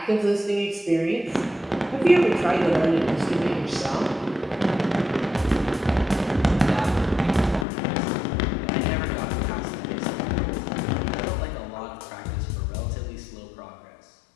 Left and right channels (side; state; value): right; drops out; at 7.7 s